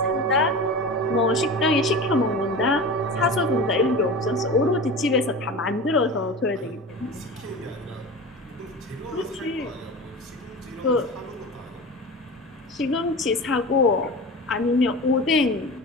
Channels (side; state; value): both; normal; correlation 0.31